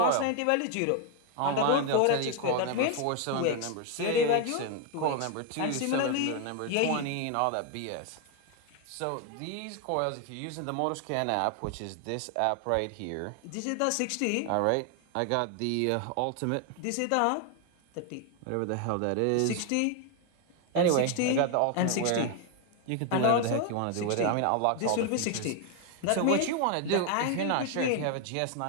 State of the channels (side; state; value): both; different; correlation 0.01